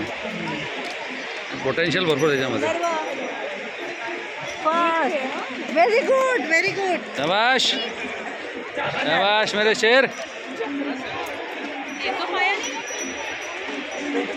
पोटेन्शियल भरपूर त्याच्यामध्ये. Very good, very good. शाबाश शाबाश मेरे शेर.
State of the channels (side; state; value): both; identical; correlation 1.00